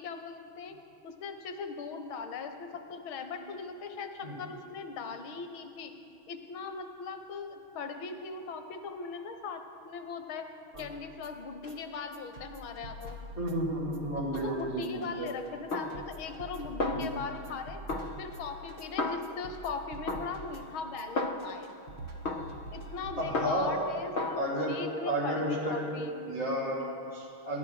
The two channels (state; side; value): late; right; 6.3 ms